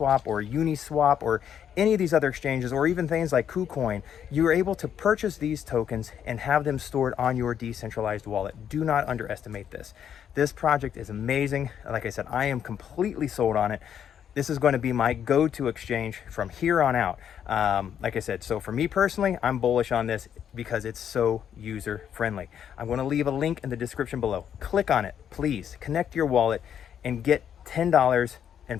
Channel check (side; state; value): right; quieter; 8.9 dB